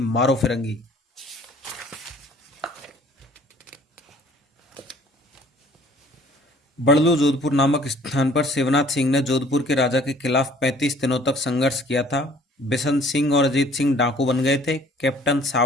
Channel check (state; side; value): normal; both; correlation 0.55